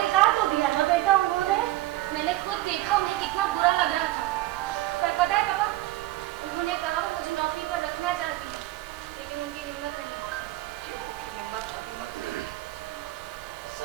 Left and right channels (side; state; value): left; quieter; 16.7 dB